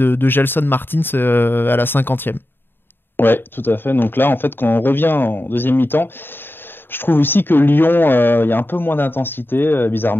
Gelson Martins à la 50e. Ouais, tout à fait. Donc là, en fait, quand on revient en deuxième mi-temps, je trouve aussi que Lyon, il y a un peu moins d'intensité,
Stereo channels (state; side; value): late; right; 0.099 ms